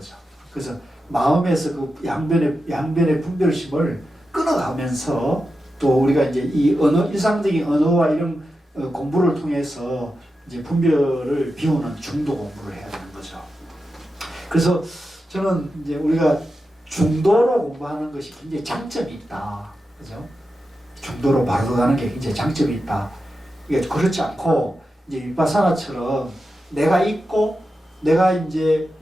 그래서 마음에서 그 양변의 분별심을 끊어가면서 또 우리가 이제 이 일상적인 언어와 이런 공부를 통해서 이제 분별을 비우는 중도 공부를 해야 되는 거죠. 그래서 저는 이제 우리가 중도로 공부하는 것이 굉장히 장점이 있다. 그죠? 중도로 바로 가는 게 굉장히 장점이 있다. 이게 그렇지 않고 이제 윗바사나처럼 내가 있고 내가 이제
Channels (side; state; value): both; normal; correlation 0.90